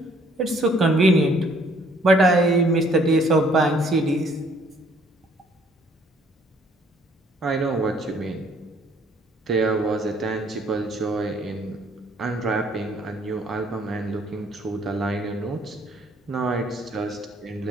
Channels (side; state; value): both; normal; correlation 0.62